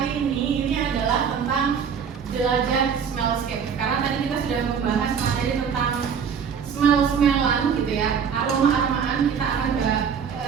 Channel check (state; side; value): quieter; left; 7.0 dB